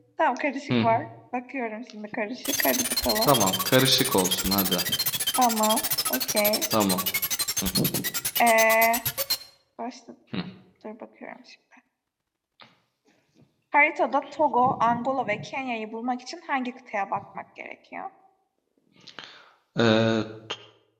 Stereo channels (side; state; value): both; identical; correlation 1.00